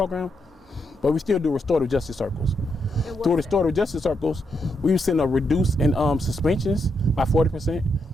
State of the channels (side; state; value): both; normal; correlation 0.81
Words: But we still do restorative justice circles. Through restorative justice circles, we've seen a reduce in suspensions by 40%